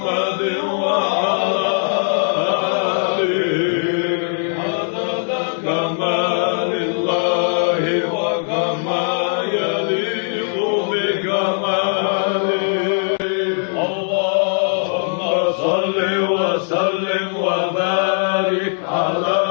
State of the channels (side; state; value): right; silent; digital silence